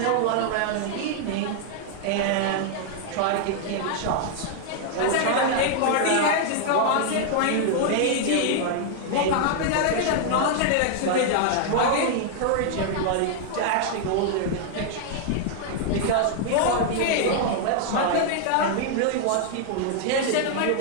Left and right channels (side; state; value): both; different; correlation 0.00